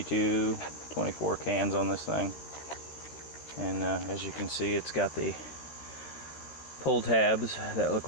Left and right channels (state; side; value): late; right; 14 ms